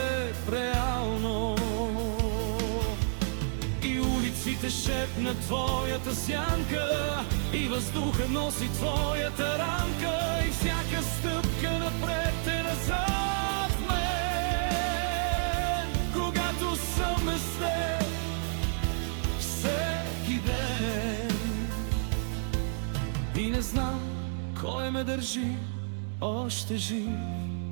реално. И улиците шепнат твоята сянка, и въздуха носи твоята рамка, и всяка стъпка напред е назад в мен, когато съм с теб всеки ден. И не знам кой ме държи още жив,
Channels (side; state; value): left; silent; 58 dB below the other